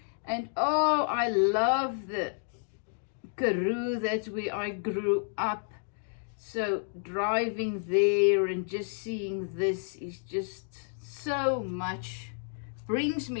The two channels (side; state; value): right; silent; 57 dB below the other